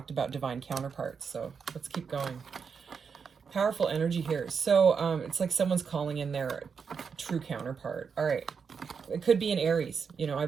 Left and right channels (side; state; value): left; quieter; 6.0 dB